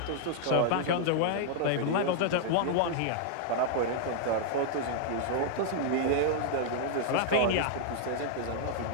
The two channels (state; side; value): different; both; correlation -0.01